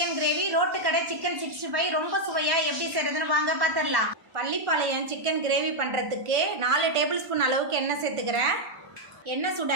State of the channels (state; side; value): late; left; 1.1 ms